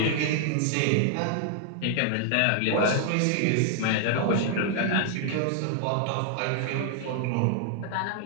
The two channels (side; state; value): both; different; correlation 0.00